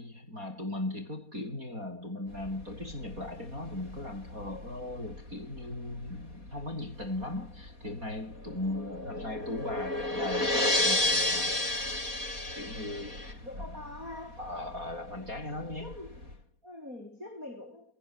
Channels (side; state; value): left; late; 4.2 ms